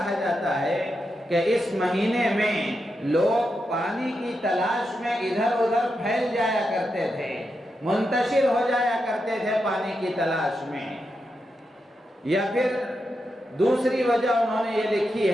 جاتا ہے کہ اس مہینے میں لوگ پانی کی تلاش میں ادھر ادھر پھیل جایا کرتے تھے، منتشر ہو جایا کرتے تھے پانی کی تلاش میں۔ یا پھر دوسری وجہ انہوں نے یہ لکھی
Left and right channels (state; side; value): normal; both; correlation 0.86